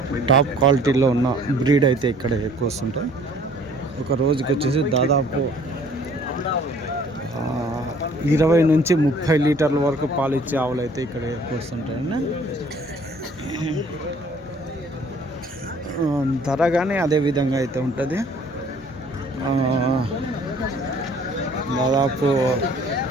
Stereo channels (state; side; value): normal; both; correlation 0.55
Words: టాప్ క్వాలిటీలో ఉన్న బ్రీడ్ అయితే ఇక్కడ ఎక్కువ వస్తుంటాయి. ఒక రోజుకి వచ్చేసి దాదాపు 20 నుంచి 30 లీటర్ల వరకు పాలు ఇచ్చే ఆవులు అయితే ఇక్కడ ఎక్కువ వస్తుంటాయండి. ధర కానీ అదే విధంగా అయితే ఉంటుంది. దాదాపు